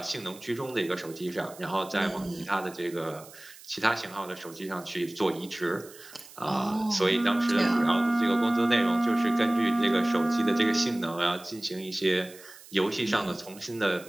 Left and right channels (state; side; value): noise; right; hiss, 20 dB below the sound